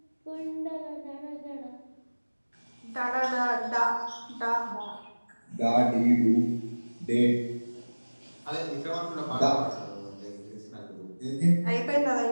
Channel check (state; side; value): inverted; both; correlation -1.00